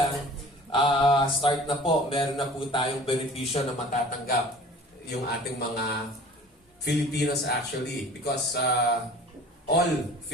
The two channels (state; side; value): normal; both; correlation 0.45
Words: start na po, meron na po tayong benepisyo na matatanggap yung ating mga Filipinos actually. Because all